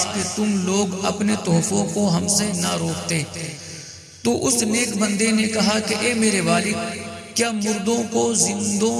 کہ تم لوگ اپنے تحفوں کو ہم سے نہ روکتے، تو اس نیک بندے نے کہا کہ اے میرے والد، کیا مردوں کو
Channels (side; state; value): both; identical; correlation 1.00